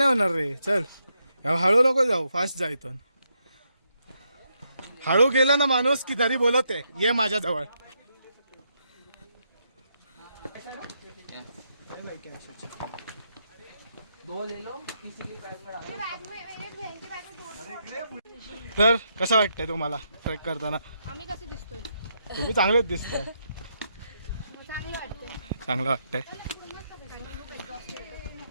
होणार रे, चल. हळू नको जाऊ, फास्ट जा इथून. हळू गेला ना माणूस की तरी बोलते ये माझ्या जवळ. तर कसं वाटतंय तुम्हाला ट्रेक करताना? आम्ही कसे दिसतोय? तुम्ही चांगलेच दिसताय. चांगलं वाटतंय. चांगलं वाटतंय.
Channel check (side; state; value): both; inverted; correlation -0.79